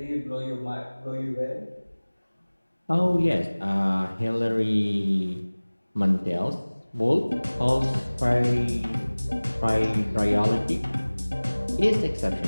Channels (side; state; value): both; inverted; correlation -1.00